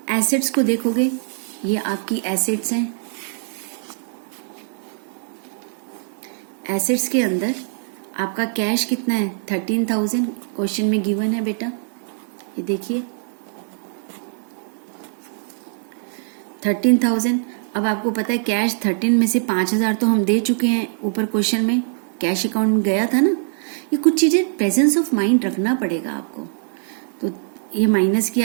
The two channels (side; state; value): left; silent; 64 dB below the other